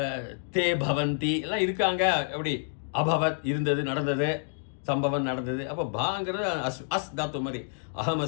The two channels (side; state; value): right; silent; digital silence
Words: தே பவந்தி எல்லாம் இருக்காங்க. எப்படி அபவத் இருந்தது, நடந்தது, சம்பவம் நடந்தது. அப்போ பாங்கிறது அஸ் தாத்து மாதிரி. அகம்